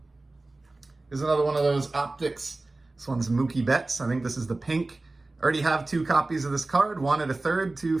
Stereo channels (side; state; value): left; quieter; 3.1 dB